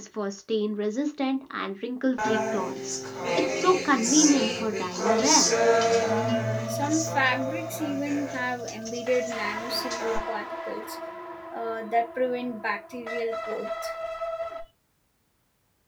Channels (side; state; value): both; identical; correlation 1.00